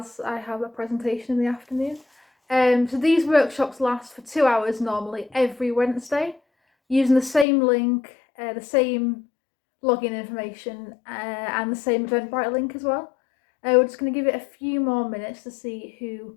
I have a presentation in the afternoon. So these workshops last for 2 hours normally every Wednesday using the same link, the same login information and the same Eventbrite link as well. We're just going to give it a few more minutes to see who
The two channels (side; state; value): right; drops out; at 7.5 s